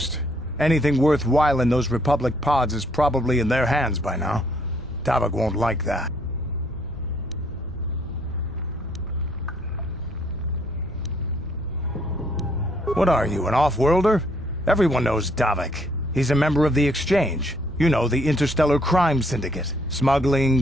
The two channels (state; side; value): normal; both; correlation 0.67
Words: Anything worthwhile in those Republic pods is probably in their hands by now. Davik won't like that. What are you, an off-worlder? Everyone knows Davik. He's a member of the Exchange. You know, the interstellar crime syndicate. Smuggling,